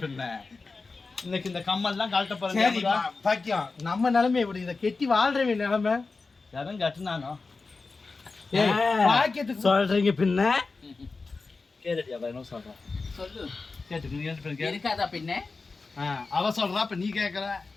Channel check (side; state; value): right; quieter; 4.0 dB